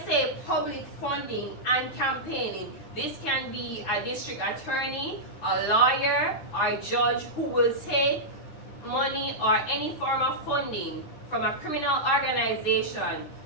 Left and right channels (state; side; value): late; right; 9.8 ms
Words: say public funding and campaigning, this can be a district attorney, a lawyer, or a judge who will take money or any form of funding from a criminal organization